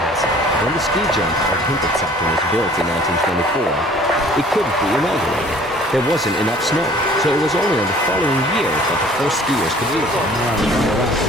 When the ski jump of Hinterzeiten was built in 1924, it couldn't be inaugurated. There wasn't enough snow, so it was only in the following year that the first skiers could use it.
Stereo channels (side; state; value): both; normal; correlation 0.52